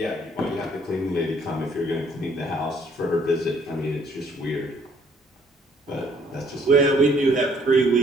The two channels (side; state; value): both; normal; correlation 0.63